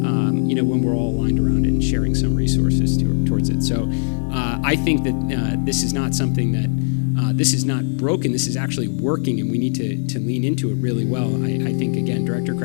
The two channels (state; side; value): silent; right; 66 dB below the other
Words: when we're all aligned around it and sharing some resources towards it. So I think that this is not something that this is not broken. This is actually working, and we need to lean into it really well. I think, again, Director